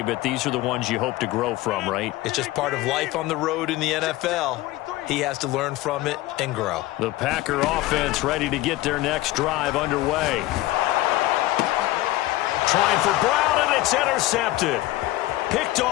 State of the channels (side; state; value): right; quieter; 17.0 dB